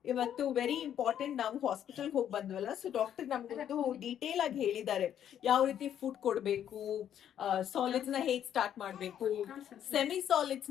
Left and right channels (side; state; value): right; quieter; 9.9 dB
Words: ಇವತ್ತು ವೆರಿ ಇಂಪಾರ್ಟೆಂಟ್, ನಾವು ಹಾಸ್ಪಿಟಲ್ ಹೋಗಿ ಬಂದ್ವಲ್ಲ, ಸೊ ಡಾಕ್ಟರ್ ನಮ್ಗೊಂದು ಡೀಟೇಲ್ ಆಗಿ ಹೇಳಿದ್ದಾರೆ ಯಾವ ರೀತಿ ಫುಡ್ ಕೊಡ್ಬೇಕು, ಸಾಲಿಡ್ಸ್ ನ ಹೇಗ್ ಸ್ಟಾರ್ಟ್ ಮಾಡ್ಬೇಕು, ಸೆಮಿ ಸಾಲಿಡ್ಸ್